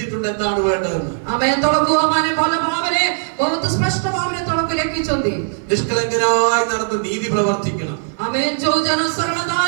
എന്താണ് വേണ്ടതെന്ന്। ആമേൻ। ତଳକୁ ମାନେ ଭଲ ଭାବରେ ବହୁତ ସ୍ପଷ୍ଟ ଭାବରେ ତଳକୁ ଲେଖିଛନ୍ତି, നിഷ്കളങ്കനായി നടന്ന് നീതി പ്രവർത്തിക്കണം। ആമേൻ। ଯୋଉ ଜନ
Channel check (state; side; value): silent; left; digital silence